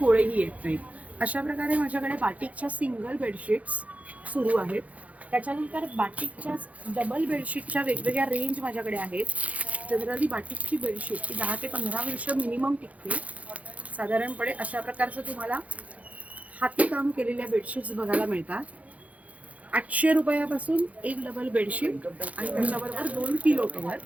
गोळेही येत नाहीत. अशा प्रकारे माझ्याकडे बाटिकच्या सिंगल बेडशीट्स सुरू आहेत. त्याच्यानंतर बाटिकच्या डबल बेडशीटच्या वेगवेगळ्या रेंज माझ्याकडे आहेत. जनरली बाटिकची बेडशीट ही 10 ते 15 वर्ष मिनिमम टिकते. साधारणपणे अशा प्रकारचं तुम्हाला हातीकाम केलेल्या बेडशीट्स बघायला मिळतात. 800 रुपयापासून एक डबल बेडशीट आणि त्याच्याबरोबर 2 पिलो कव्हर.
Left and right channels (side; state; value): left; late; 0.068 ms